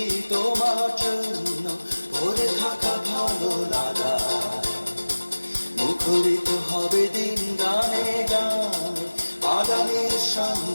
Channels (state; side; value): inverted; both; correlation -1.00